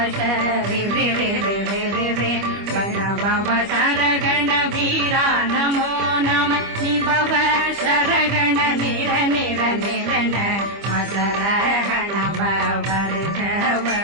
வண பவ சரகண வீரா நமோ நம நிபவ சரகண நிர நிர நிரண மசரகண வருக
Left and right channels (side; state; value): left; late; 25 ms